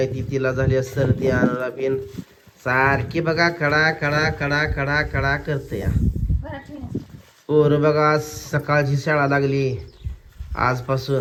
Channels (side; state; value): both; identical; correlation 1.00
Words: ती, तिला झाली सर्दी आणायला पिन. सारखी बघा कडा कडा कडा कडा कडा करते या. पोरं बघा आज सकाळची शाळा लागली